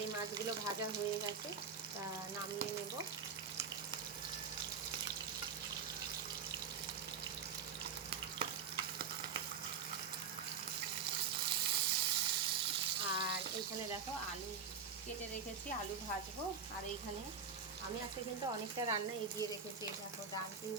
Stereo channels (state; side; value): quieter; left; 6.2 dB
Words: এই মাছগুলো ভাজা হয়ে গেছে, তা নামিয়ে নেব। আর এইখানে দেখো আলু কেটে রেখেছি, আলু ভাজবো। আর এইখানে আমি আজকে কিন্তু অনেকটা রান্না এগিয়ে রেখেছি। দেখো ডাল